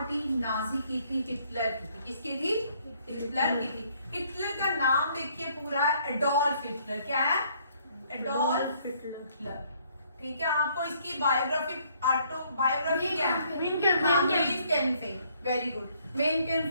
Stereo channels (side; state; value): both; inverted; correlation -0.66